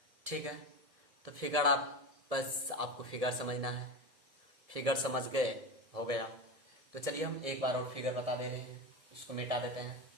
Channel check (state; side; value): late; left; 1.7 ms